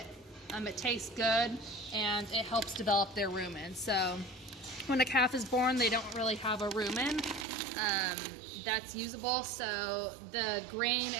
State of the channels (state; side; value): drops out; left; at 7.5 s